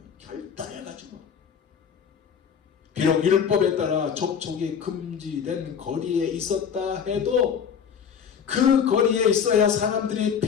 결단해가지고. 비록 율법에 따라 접촉이 금지된 거리에 있었다 해도 그 거리에 있어야 사람들이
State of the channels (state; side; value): quieter; right; 7.3 dB